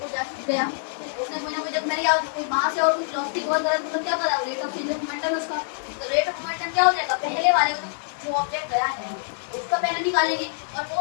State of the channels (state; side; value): silent; right; digital silence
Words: जा गया उसने कोई ना कोई, जब मेरे यहाँ कोई मास है और कोई वेलोसिटी बहुत ज़्यादा, तो क्या कर रहा है? Rate of change of momentum उसका। तो रेट ऑफ मोमेंटम क्या हो जाएगा? पहले वाले जो ऑब्जेक्ट गया है उसका पहले निकालेंगे। और